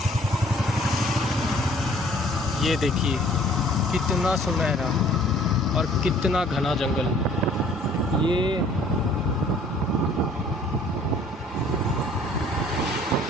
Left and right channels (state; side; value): normal; both; correlation 0.55